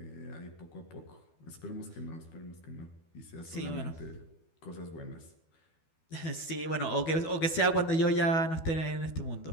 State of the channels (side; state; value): right; late; 12 ms